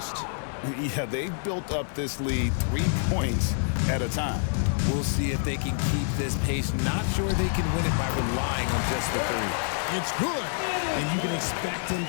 Yeah, they've built up this lead 3 points at a time. We'll see if they can keep this pace. Not sure they can win it by relying on just the three. It's good. And you can expect him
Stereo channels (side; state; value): right; silent; 60 dB below the other